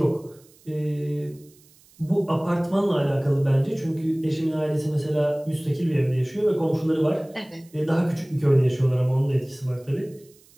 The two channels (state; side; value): noise; right; hiss, 28 dB below the sound